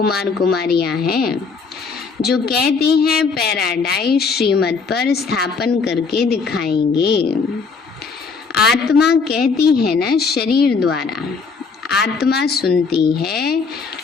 कुमारियां हैं जो कहते हैं पैराडाइज श्रीमत पर स्थापन करके दिखाएंगे। आत्मा कहती है ना शरीर द्वारा, आत्मा सुनती है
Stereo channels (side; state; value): right; quieter; 5.0 dB